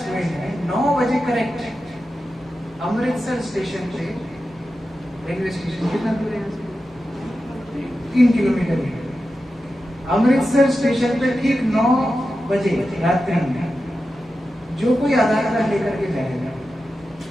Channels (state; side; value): normal; both; correlation 0.91